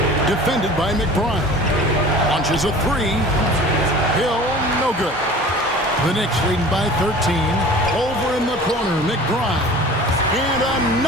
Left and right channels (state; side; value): normal; both; correlation 0.42